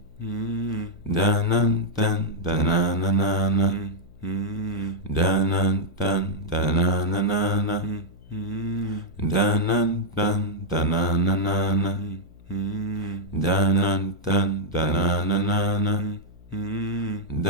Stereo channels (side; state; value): left; noise; hum, 23 dB below the sound